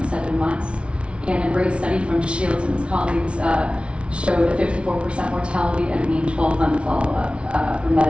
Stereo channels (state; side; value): late; left; 0.059 ms